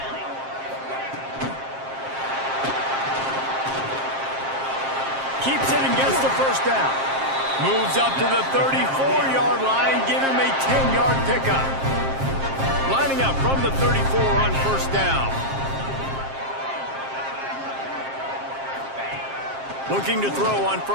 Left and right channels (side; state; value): left; late; 7.5 ms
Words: Keeps it and gets the first down. Moves up to the 34-yard line, give him a 10-yard pickup. Lining up from the 34 on first down. Looking to throw on